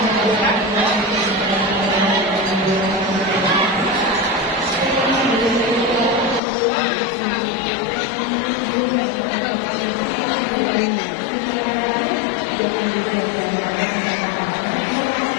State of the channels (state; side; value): drops out; right; at 6.4 s